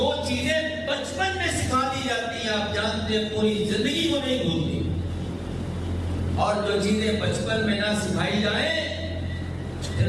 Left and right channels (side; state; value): both; identical; correlation 1.00